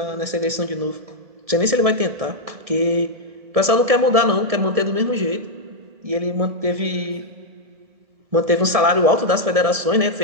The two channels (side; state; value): left; late; 1.7 ms